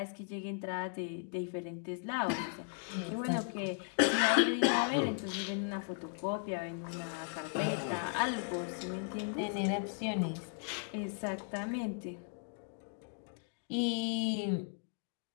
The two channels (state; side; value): silent; right; 53 dB below the other